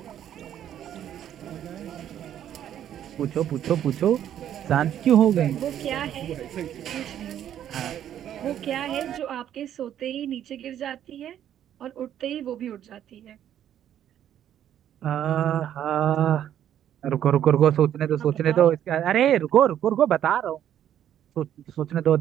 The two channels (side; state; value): left; quieter; 10.6 dB